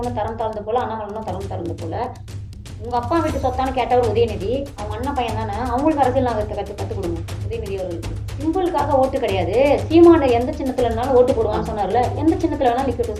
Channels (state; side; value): identical; both; correlation 1.00